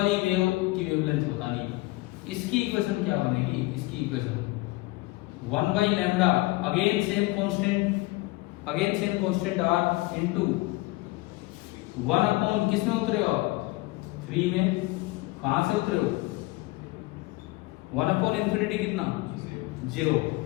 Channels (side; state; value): right; quieter; 21.4 dB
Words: वेव की वेवलेंथ बतानी है। इसकी इक्वेशन क्या बनेगी? इसकी equation 1 by lambda, again same constant R into 1 upon किस में उतरे हो आप? 3 में। कहां से उतरे हो? 1 अपॉन इंफिनिटी कितना? 0।